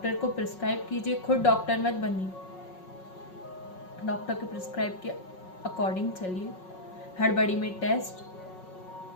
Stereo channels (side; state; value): right; late; 5.4 ms